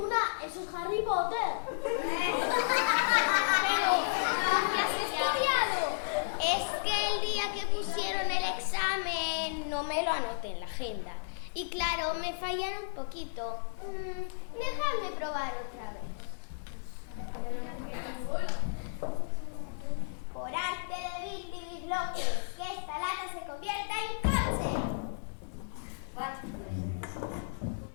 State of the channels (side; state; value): right; silent; 56 dB below the other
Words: Eso es Harry Potter. Pero, ¿qué has estudiado? Es que el día que pusieron el examen no me lo anoté en la agenda. Y claro, me fallaron un poquito. Déjame probar otra vez. Por arte de Billy que esta lata se convierta en coche.